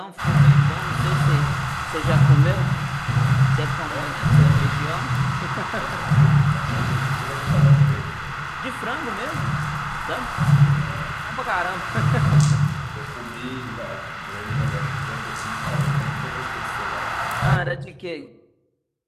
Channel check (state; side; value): identical; both; correlation 1.00